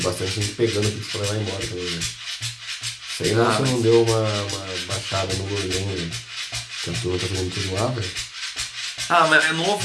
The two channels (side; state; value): both; identical; correlation 1.00